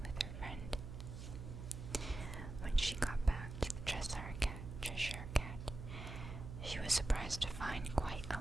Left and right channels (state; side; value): noise; right; hum, 8 dB below the sound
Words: with her friend. When she got back to the Cheshire Cat, she was surprised to find quite